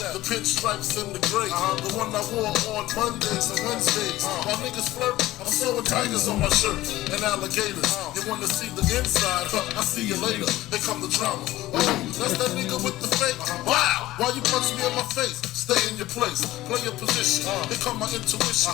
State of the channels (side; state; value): right; quieter; 16.4 dB